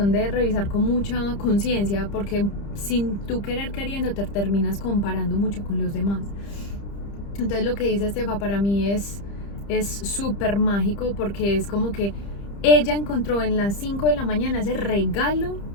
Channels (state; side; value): late; right; 30 ms